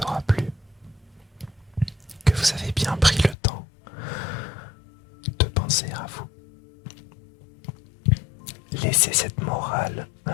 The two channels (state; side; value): drops out; right; at 3.4 s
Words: aura plu, que vous avez bien pris le temps de penser à vous. Laissez cette morale